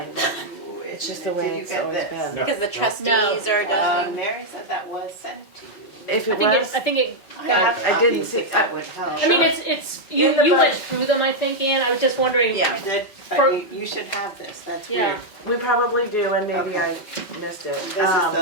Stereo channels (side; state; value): right; late; 5.0 ms